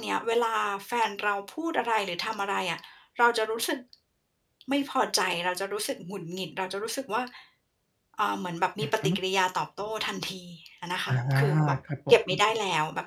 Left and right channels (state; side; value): identical; both; correlation 1.00